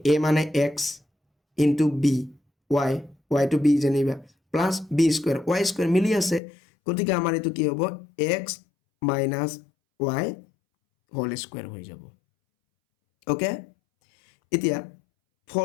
মানে x into b y to b যেনিবা plus b square y square মিলি আছে গতিকে আমাৰ এটো কি হ'ব x minus y whole square হৈ যাব ওকে এতিয়া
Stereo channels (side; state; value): right; drops out; at 6.4 s